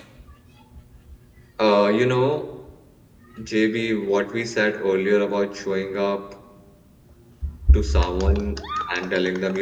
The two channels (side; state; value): both; identical; correlation 1.00